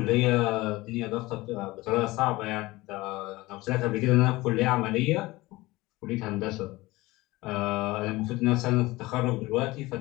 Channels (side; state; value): right; quieter; 20.1 dB